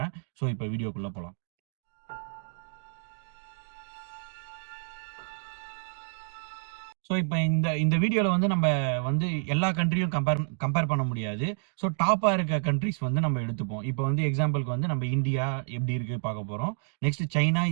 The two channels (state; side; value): silent; left; digital silence